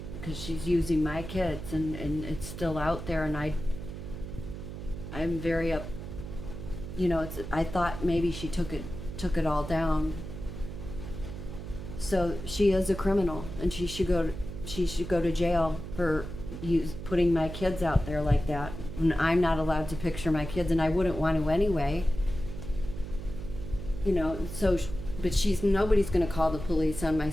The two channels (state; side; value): noise; right; hum, 9 dB below the sound